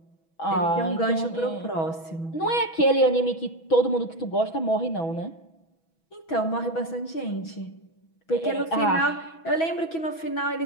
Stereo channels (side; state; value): right; late; 6.1 ms